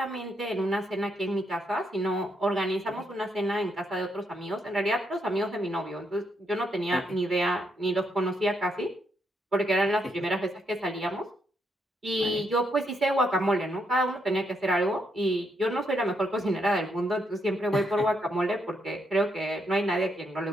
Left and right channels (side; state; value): both; normal; correlation 0.77